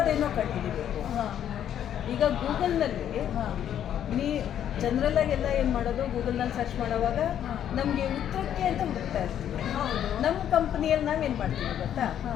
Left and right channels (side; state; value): right; quieter; 10.1 dB